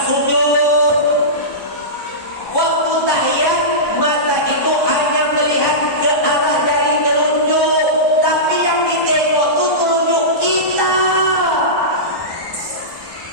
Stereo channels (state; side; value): late; right; 1.2 ms